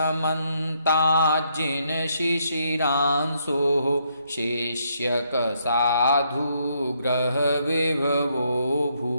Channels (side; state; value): both; inverted; correlation -0.74